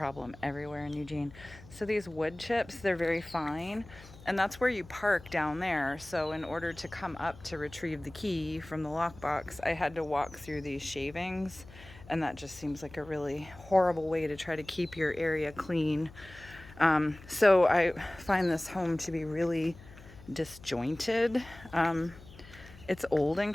everywhere in Eugene. So these wood chips, they're very fine, and that's where you park down there. So in order to come up to retrieve the key from the lockbox, I had to walk through these shavings, and that just seems like a really horrible way to try to keep your area clean. So I find this home to be really disjointed. It's old and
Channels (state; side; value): noise; left; hum, 19 dB below the sound